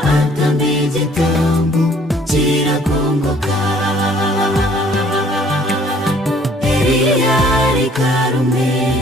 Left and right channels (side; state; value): both; normal; correlation 0.58